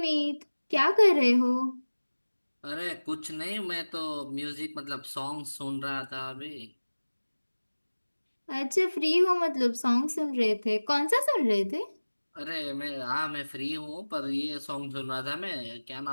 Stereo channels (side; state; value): both; inverted; correlation -1.00